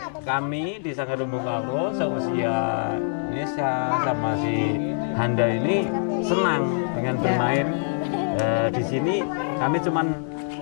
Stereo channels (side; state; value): right; silent; digital silence